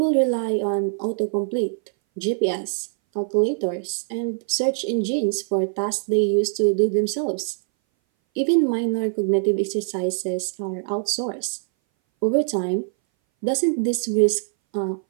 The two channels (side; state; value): left; silent; 60 dB below the other